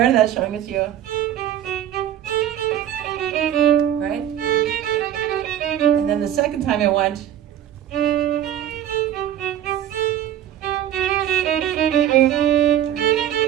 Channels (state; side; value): quieter; left; 11.1 dB